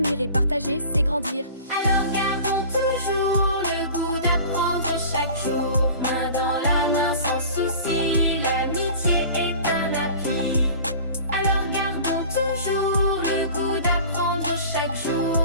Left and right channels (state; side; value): inverted; both; correlation -0.41